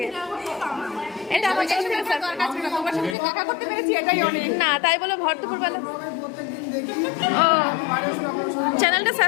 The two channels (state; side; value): drops out; right; at 3.2 s